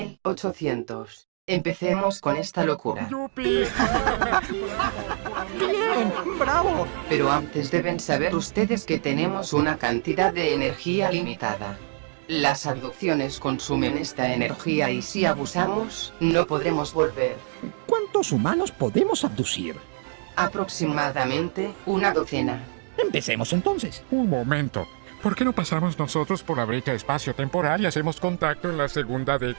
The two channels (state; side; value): silent; left; digital silence